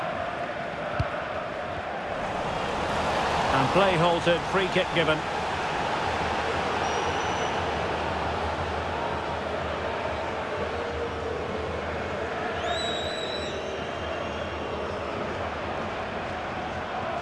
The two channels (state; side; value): identical; both; correlation 1.00